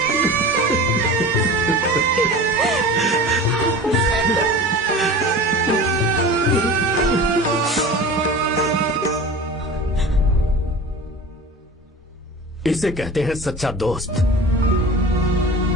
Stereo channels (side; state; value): both; normal; correlation 0.36